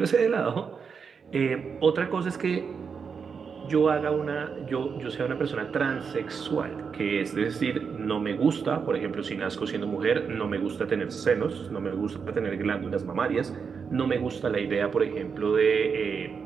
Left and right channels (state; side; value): quieter; left; 6.0 dB